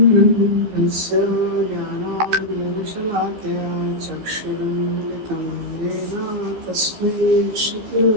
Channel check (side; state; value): left; late; 14 ms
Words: ज्ञानाञ्जनशलाकया चक्षुरुन्मिलितं येन तस्मै